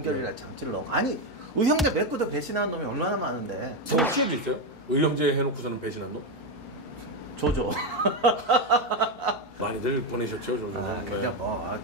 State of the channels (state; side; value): normal; both; correlation 0.08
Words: 장치를 넣고 아니 의형제 맺고도 배신하는 놈이 얼마나 많은데. 정치에도 있어요? 의형제 해놓고서는 배신한 놈? 조조. 많이들 보내셨죠, 조조는. 그러니까 뭐